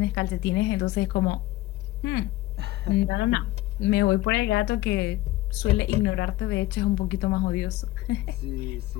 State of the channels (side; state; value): right; quieter; 17.0 dB